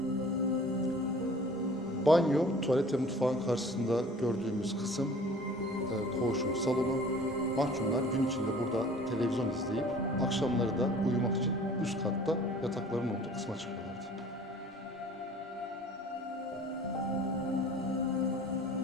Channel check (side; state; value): both; normal; correlation 0.48